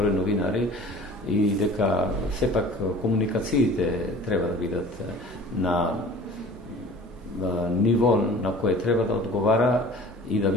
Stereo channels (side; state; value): both; normal; correlation 0.44